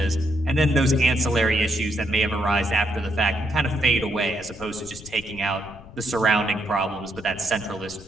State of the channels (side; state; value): left; noise; rumble, 18 dB below the sound